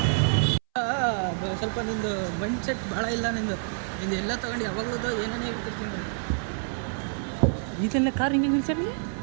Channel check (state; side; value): silent; left; 60 dB below the other